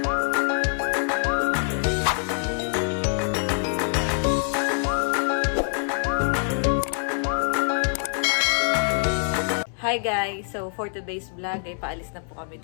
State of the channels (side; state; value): right; silent; digital silence